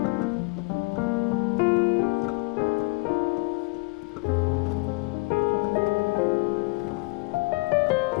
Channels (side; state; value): right; quieter; 26.8 dB